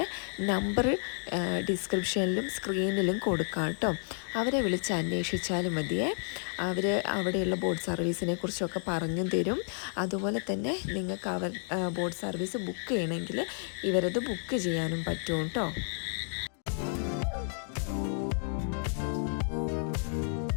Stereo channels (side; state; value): right; silent; 57 dB below the other